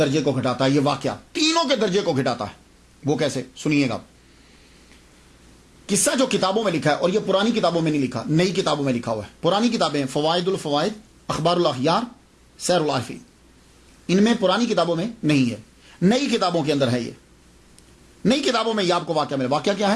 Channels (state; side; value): identical; both; correlation 1.00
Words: کو گھٹاتا ہے. یہ واقعہ تینوں کے درجے کو گھٹاتا ہے. وہ کیسے, سنیے گا. قصہ جو کتابوں میں لکھا ہے, اور یہ پرانی کتابوں میں نہیں لکھا, نئی کتابوں میں لکھا ہوا ہے. پرانی کتابیں فوائد الفوائد, اخبار الاخیار, سیر العارفین, ان میں پرانی کتابوں میں نہیں ہے, نئی کتابوں کے اندر ہے. یہ نئی کتابوں میں یہ آپ کو واقعہ ملے. واقعہ کیا